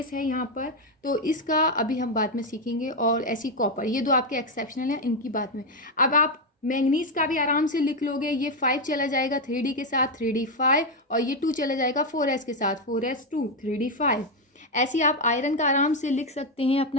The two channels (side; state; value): both; normal; correlation 0.05